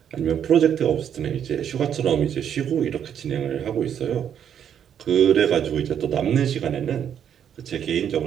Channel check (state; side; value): quieter; left; 8.9 dB